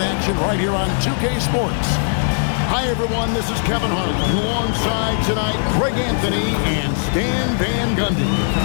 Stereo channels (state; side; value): silent; right; digital silence